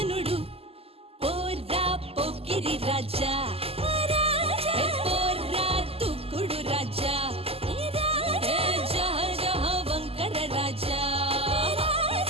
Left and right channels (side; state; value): left; late; 0.29 ms